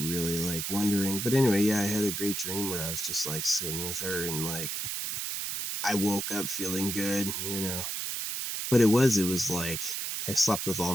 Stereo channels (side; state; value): right; noise; hiss, 3 dB below the sound